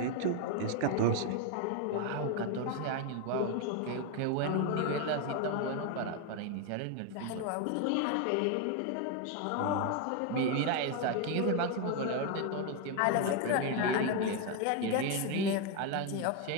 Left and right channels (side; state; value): both; different; correlation 0.01